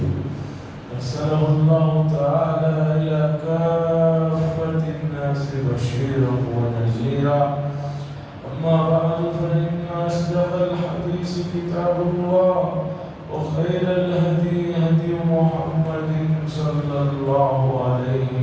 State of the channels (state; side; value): identical; both; correlation 1.00